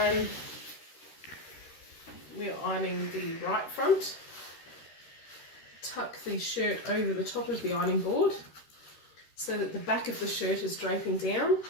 we're ironing the right front. Tuck the shirt over the top of the ironing board so that the back of the shirt is draping down.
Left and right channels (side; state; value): right; late; 13 ms